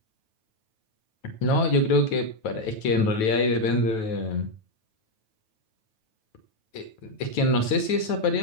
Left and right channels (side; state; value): right; late; 9.2 ms